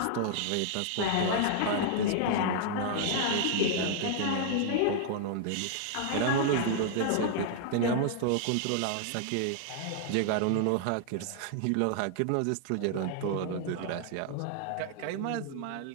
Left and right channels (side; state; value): both; different; correlation 0.00